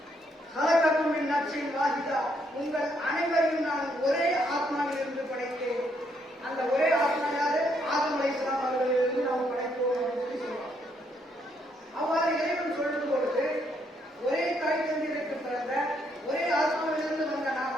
"ஹலகக்கும் மின் நஃப்ஸின் வாஹிதா", உங்கள் அனைவரையும் நான் ஒரே ஆத்மாவில் இருந்து படைத்தேன். அந்த ஒரே ஆத்மா யாரு? ஆதம் அலைஹிஸ்ஸலாம் அவர்களிலிருந்து நாம் படைத்தோம் என்று சொல்றோம். அவ்வாறு இறைவன் சொல்லும் பொழுது ஒரே தாய் தந்தையருக்கு பிறந்த ஒரே ஆத்மாவிலிருந்து வந்த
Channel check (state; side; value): normal; both; correlation 0.73